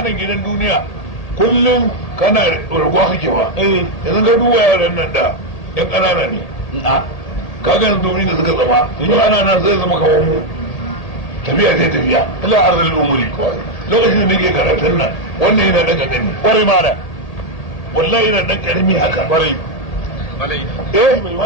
nan gidan duniya kullum kana raguwa kake ba yanzu ga duwa yaran nan da ɗan ƙanana ne kagan domin da suka zama in ana nan zai zama kawo mu tafiya sai tafiya ila arzal umuri lokacin da ke karatun nan wannan yana dan karami kwarai mara wallahi yana dan karami haka kwarai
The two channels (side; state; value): right; late; 1.8 ms